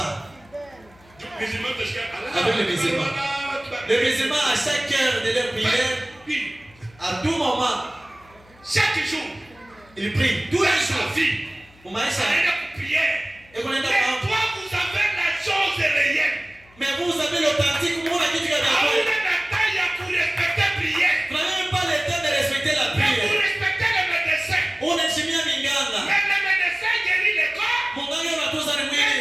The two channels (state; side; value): noise; left; hum, 27 dB below the sound